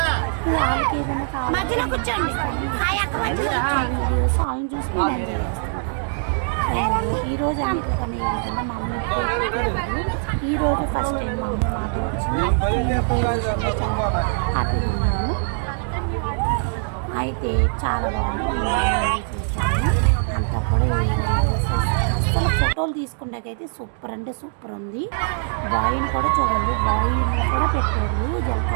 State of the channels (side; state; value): left; silent; digital silence